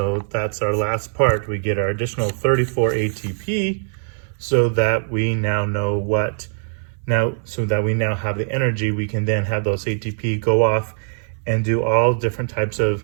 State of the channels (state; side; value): silent; left; 61 dB below the other